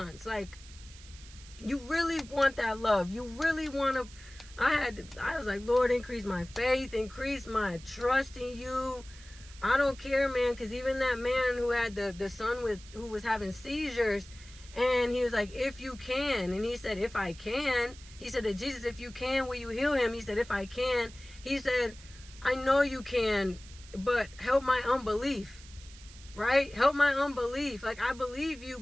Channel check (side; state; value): right; noise; hiss, 20 dB below the sound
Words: Like, You really want that love. You really want to. I was like, Lord, increase my faith, increase my trust in you. I don't care, man, because even that man who had the son who was having seizures, and he was like, if you can, and he said, if I can, he said to Jesus, if you can, will you heal him? He said, if I can, he said, I know you can, but help my unbelief, right? Help my unbelief. Like, I believe you,